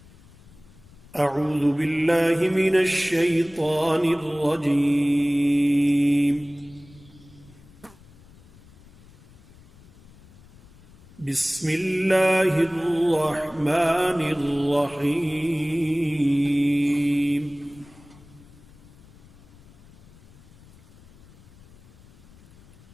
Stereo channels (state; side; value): noise; left; rumble, 24 dB below the sound